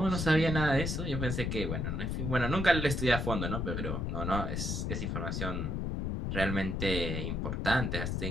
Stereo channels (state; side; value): noise; left; rumble, 1 dB below the sound